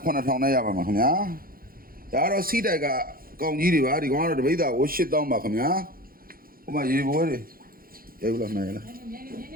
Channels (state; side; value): late; left; 0.42 ms